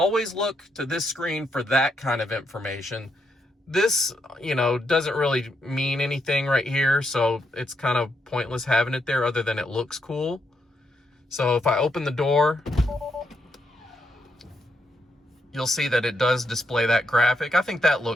look to this screen for that kind of information. This, you know, doesn't really mean anything right here, so it's kind of pointless having it there other than it looks cool. So if I open the door, you'll see that it does display that graphic. I think that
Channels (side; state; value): both; normal; correlation 0.79